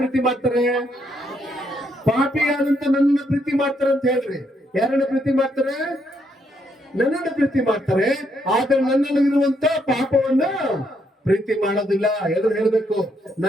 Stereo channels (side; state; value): both; normal; correlation 0.75